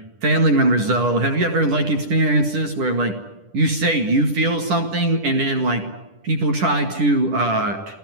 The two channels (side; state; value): left; late; 10 ms